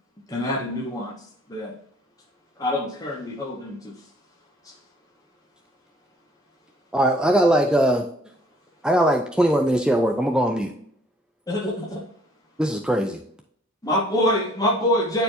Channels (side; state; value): both; normal; correlation 0.59